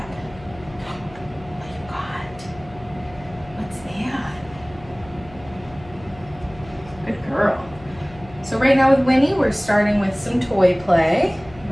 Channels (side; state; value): left; noise; hum, 20 dB below the sound